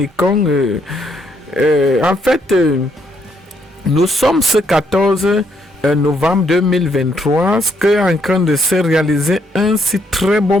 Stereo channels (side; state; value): both; normal; correlation 0.73